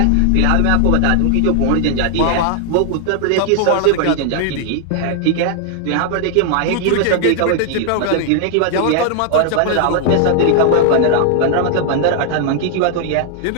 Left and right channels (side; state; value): both; different; correlation 0.00